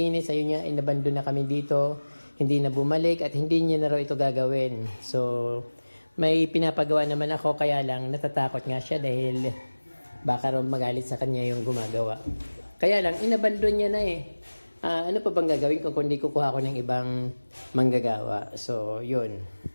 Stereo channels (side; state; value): both; inverted; correlation -1.00